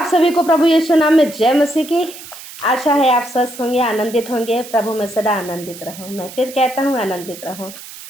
सभी को प्रभु यीशु नाम में जय मसीह की। आशा है आप स्वस्थ होंगे, आनंदित होंगे। प्रभु में सदा आनंदित रहो। मैं फिर कहता हूँ आनंदित रहो।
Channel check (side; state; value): right; noise; hiss, 15 dB below the sound